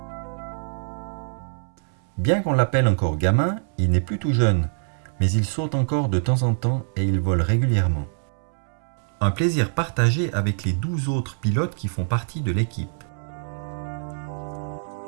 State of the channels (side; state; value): left; silent; 62 dB below the other